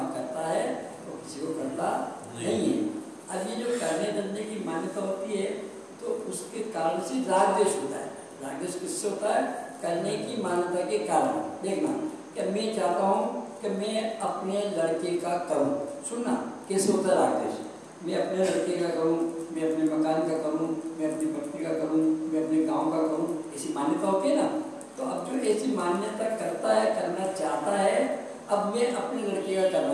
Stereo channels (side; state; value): both; identical; correlation 1.00